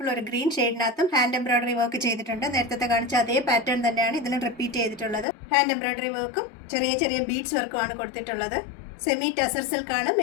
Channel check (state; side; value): drops out; right; at 5.2 s